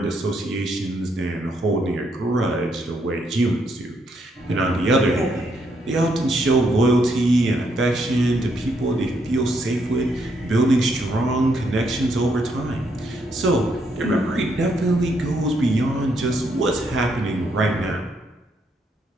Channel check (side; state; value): both; normal; correlation 0.75